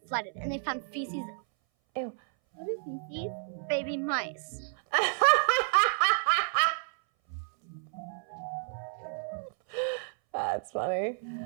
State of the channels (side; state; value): left; silent; 57 dB below the other